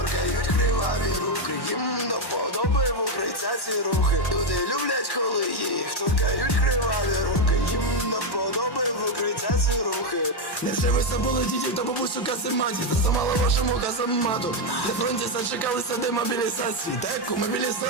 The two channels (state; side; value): late; right; 1.1 ms